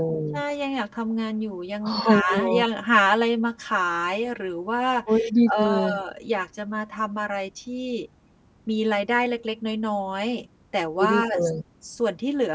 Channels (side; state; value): both; identical; correlation 1.00